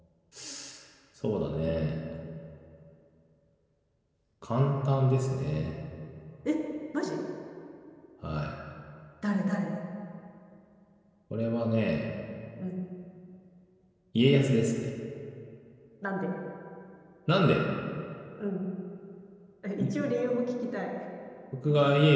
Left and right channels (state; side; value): identical; both; correlation 1.00